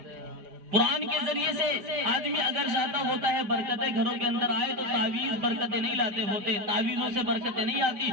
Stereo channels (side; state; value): left; late; 4.9 ms